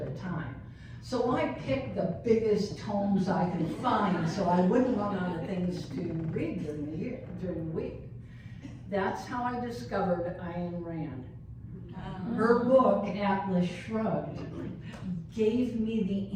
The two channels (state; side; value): identical; both; correlation 1.00